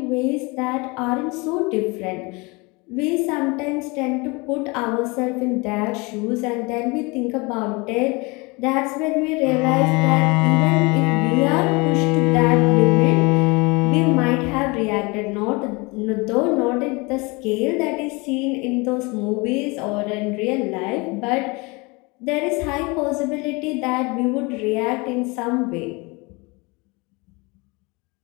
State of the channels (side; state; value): right; quieter; 26.8 dB